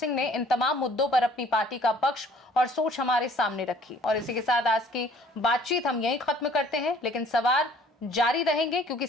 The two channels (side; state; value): both; normal; correlation 0.56